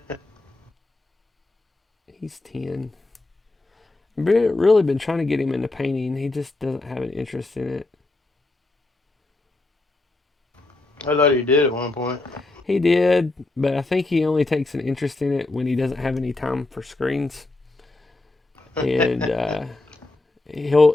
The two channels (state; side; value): quieter; right; 3.0 dB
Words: He's 10. I've really been trying to get him into painting. He just doesn't have an interest in it. I thought he did at one point. He did, but I think he only takes an interest in it when he doesn't have any time for screens. And